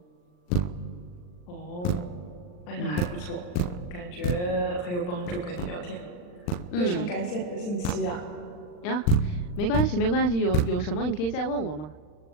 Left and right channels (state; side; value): late; right; 40 ms